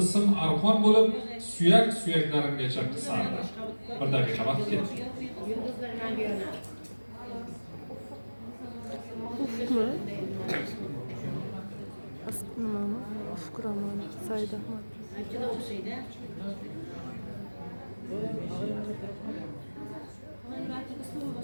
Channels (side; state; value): both; inverted; correlation -1.00